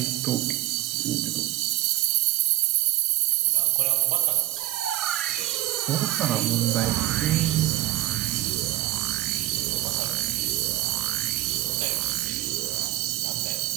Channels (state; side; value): quieter; left; 16.8 dB